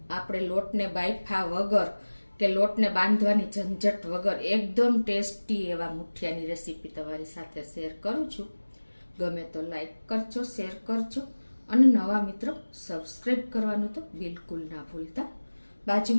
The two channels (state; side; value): inverted; both; correlation -1.00